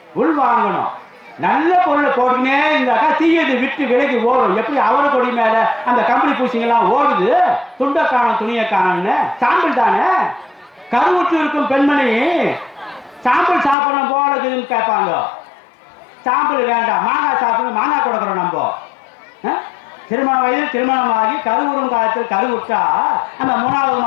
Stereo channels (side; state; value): right; drops out; at 13.8 s